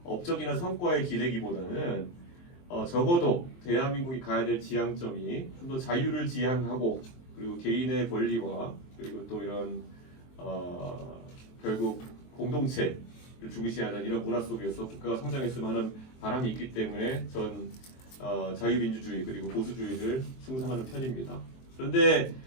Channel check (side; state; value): right; late; 23 ms